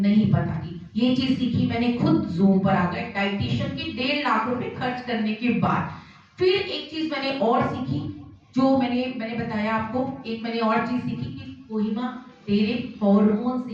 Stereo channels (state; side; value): identical; both; correlation 1.00